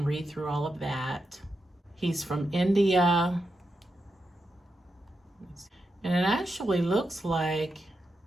read through all of that. He's from India. And it actually looks like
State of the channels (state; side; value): normal; both; correlation 0.87